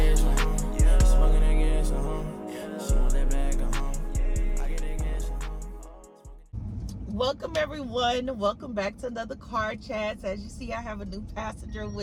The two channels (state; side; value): identical; both; correlation 1.00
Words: Smoking that gas, She want that bag, I get that cash, Welcome everyone. Welcome back to another Car Chats. As you see, I have a new passenger